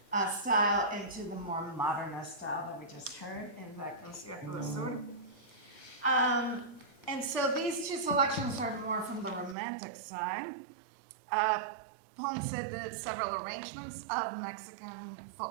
style into the more modernist style that we just heard in the Concierto del Sur. And so these two selections are more from the romantic side. Ponce did several arrangements of Mexican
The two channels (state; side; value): drops out; left; at 9.6 s